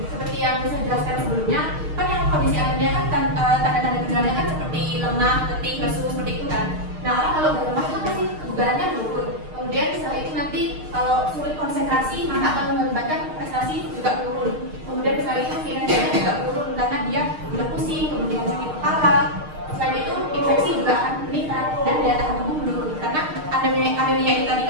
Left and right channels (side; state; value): left; late; 6.5 ms